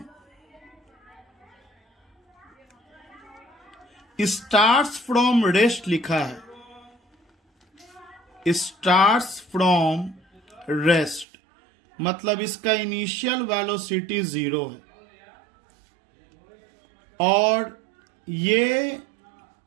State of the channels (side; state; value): left; drops out; at 11.2 s